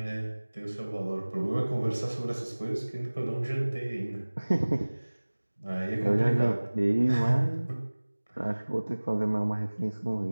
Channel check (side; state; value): both; inverted; correlation -1.00